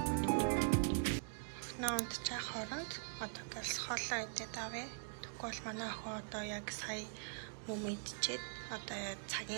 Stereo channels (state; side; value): silent; left; digital silence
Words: Наад чаа хооронд одоо гэлс хоолоо идээд авъя. Тэгвэл манай охин одоо яг сая мөм идчихэд одоо